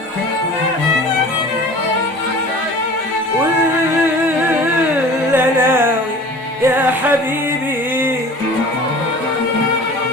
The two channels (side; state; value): both; normal; correlation 0.42